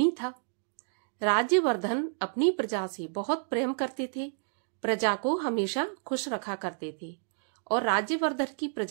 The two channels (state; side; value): silent; left; digital silence